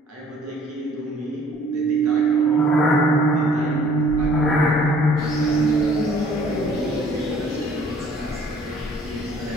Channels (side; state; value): both; normal; correlation 0.56